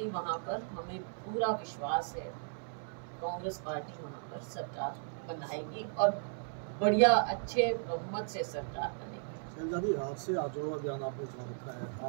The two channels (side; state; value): left; silent; 54 dB below the other